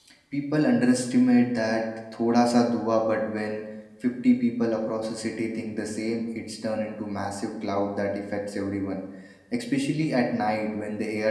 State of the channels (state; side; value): identical; both; correlation 1.00